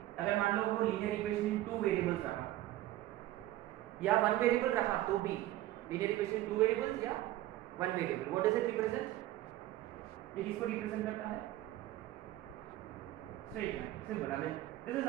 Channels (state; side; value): quieter; left; 15.1 dB